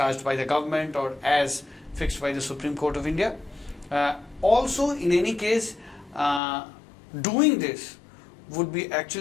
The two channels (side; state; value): right; drops out; at 6.4 s